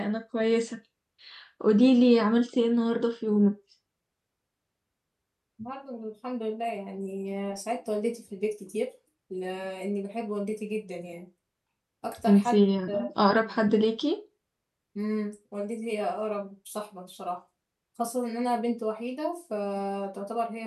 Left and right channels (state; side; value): identical; both; correlation 1.00